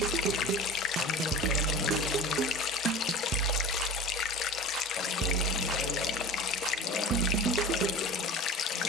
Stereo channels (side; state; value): both; normal; correlation 0.36